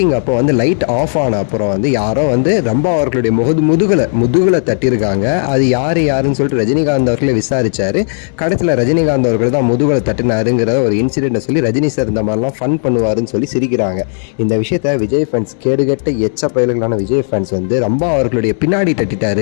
அப்போ வந்து லைட் ஆஃப் ஆன அப்புறம் வந்து யாரோ வந்து ரம்பா அவர்களுடைய முதுகில் தட்டியிருக்காங்க. அது யாருன்னு சொல்லிட்டு ரஜினிகாந்த் அவர்களை விசாரிச்சாரு. கடைசியில் ரஜினிகாந்த் அவர்கள் தான் முதுகலை தட்டினாருங்கிற ஒரு இன்சிடென்ட்டை சொல்லி ரஜினி சார் இந்த மாதிரிலாம் ஃபன் பண்ணுவாருன்னு சொல்லி சிரிக்கிறாங்க. இந்த விஷயத்த விஜய் ஃபேன்ஸ், கேடுகட்ட எச்ச பயல்களான விஜய் ஃபேன்ஸ் வந்து ரம்பா அவர்களுடைய பின்னாடி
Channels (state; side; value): silent; right; digital silence